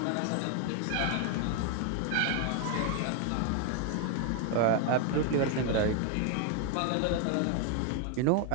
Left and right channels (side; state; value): both; different; correlation 0.01